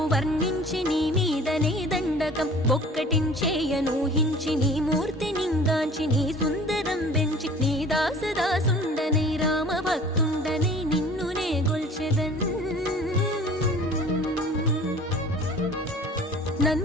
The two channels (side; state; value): both; normal; correlation 0.46